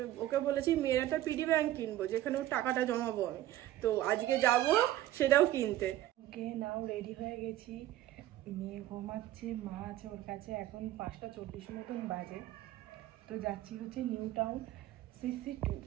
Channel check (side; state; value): left; quieter; 14.0 dB